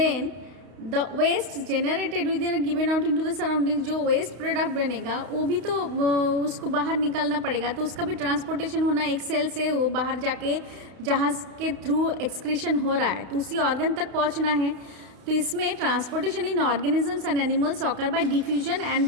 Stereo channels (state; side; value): late; left; 32 ms